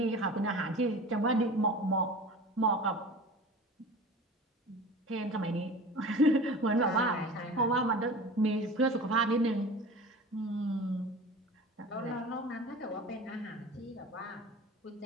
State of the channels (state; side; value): normal; both; correlation 0.37